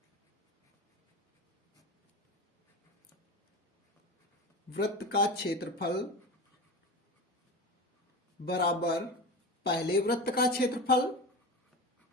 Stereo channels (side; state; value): both; normal; correlation 0.27